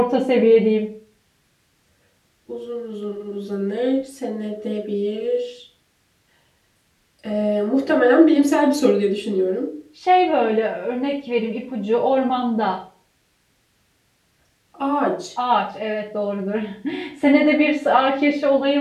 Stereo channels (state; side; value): identical; both; correlation 1.00